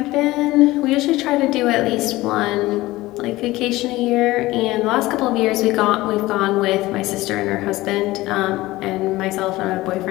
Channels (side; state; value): right; quieter; 18.5 dB